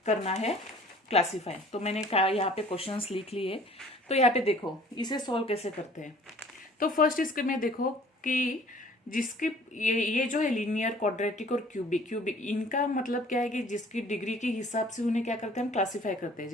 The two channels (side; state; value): both; normal; correlation 0.52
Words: करना है क्लासिफाई। तो मैंने कहा यहाँ पे क्वेश्चंस लिख लिए। तो यहाँ पे देखो इसे सॉल्व कैसे करते हैं। तो फर्स्ट इसके में देखो कि जिसकी ये जो है लीनियर, क्वाड्रेटिक और क्यूबिक, इनका मतलब क्या है कि जिसकी डिग्री के हिसाब से उन्हें क्या करते हैं, हम क्लासिफाई करते हैं।